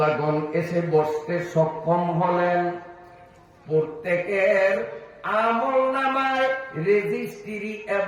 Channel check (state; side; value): identical; both; correlation 1.00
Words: এসে বসতে সক্ষম হলেন, প্রত্যেকের আমল নামায় রেজিস্ট্রি